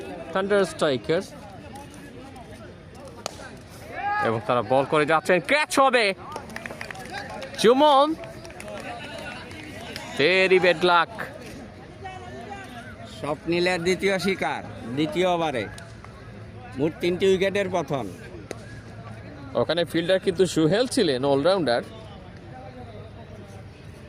স্ট্রাইকার্স, এবং তারা বল করে যাচ্ছেন, ক্যাচ হবে জুমন। Very bad luck. স্বপ্নিলের দ্বিতীয় শিকার দ্বিতীয় ওভারে, মোট 3টি উইকেটের পতন। ওখানে ফিল্ডার কিন্তু সুহেল ছিলেন, অলরাউন্ডার।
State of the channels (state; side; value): identical; both; correlation 1.00